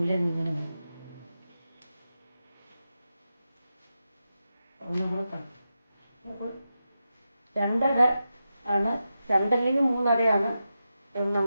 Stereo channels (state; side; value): inverted; both; correlation -0.89